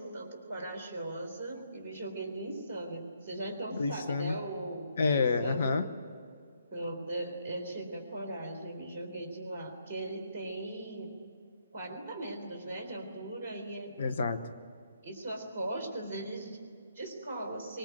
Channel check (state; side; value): inverted; both; correlation -0.74